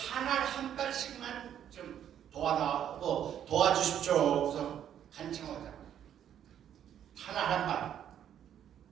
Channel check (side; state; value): left; quieter; 9.9 dB